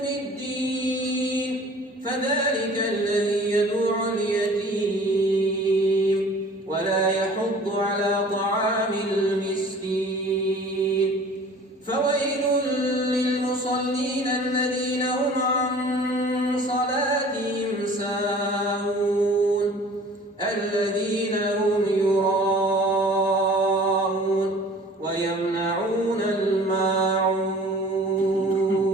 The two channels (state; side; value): normal; both; correlation 0.47